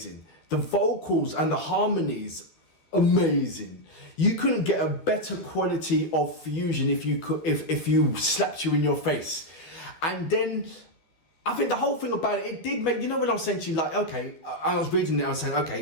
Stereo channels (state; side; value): late; right; 13 ms